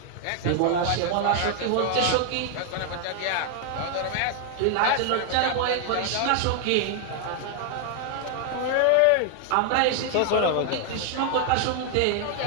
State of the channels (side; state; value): both; different; correlation 0.00